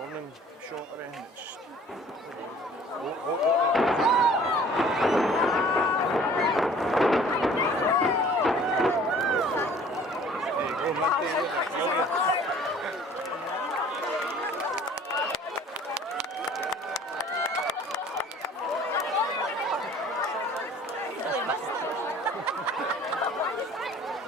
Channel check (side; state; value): both; normal; correlation 0.51